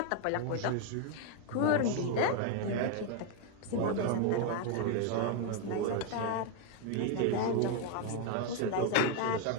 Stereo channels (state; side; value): different; both; correlation 0.01